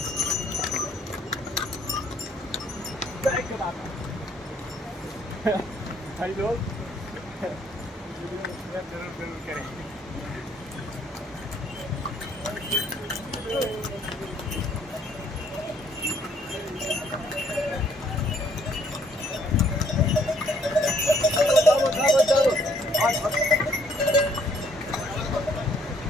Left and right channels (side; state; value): both; normal; correlation 0.65